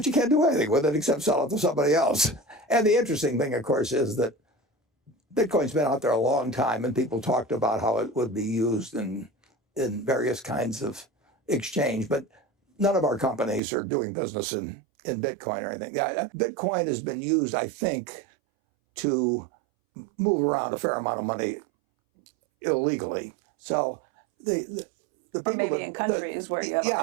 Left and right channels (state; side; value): drops out; left; at 13.6 s